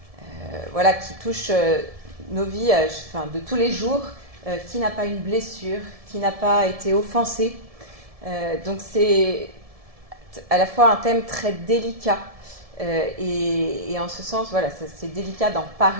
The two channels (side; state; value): left; late; 1.7 ms